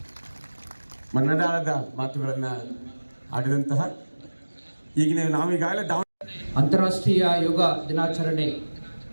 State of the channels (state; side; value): inverted; both; correlation -1.00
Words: ಮನದಾಳದ ಮಾತುಗಳನ್ನು ಆಡಿದಂತಹ ಈಗಿನ ನಾವೀಗಾಗಲೇ ಅಂತಾರಾಷ್ಟ್ರೀಯ ಯೋಗ ದಿನಾಚರಣೆ